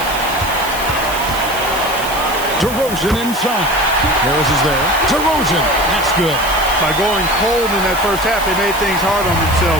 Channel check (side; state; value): right; noise; hiss, 11 dB below the sound